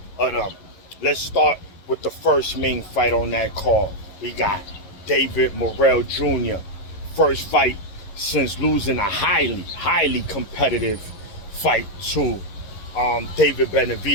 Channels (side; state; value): right; late; 11 ms